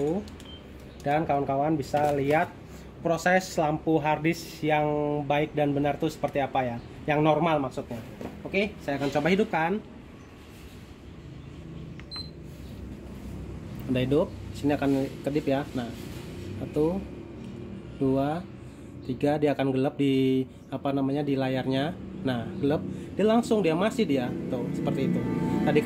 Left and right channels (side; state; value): both; identical; correlation 1.00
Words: Dan kawan-kawan bisa lihat proses lampu harddisk yang baik dan benar itu seperti apa ya. Yang normal maksudnya. Oke, saya akan coba hidupkan. Udah hidup. Sini akan kedip ya. Nah, 1, 2, 3, dia akan gelap di di layarnya. Nah, gelap, dia masih tuh seperti itu. Tadi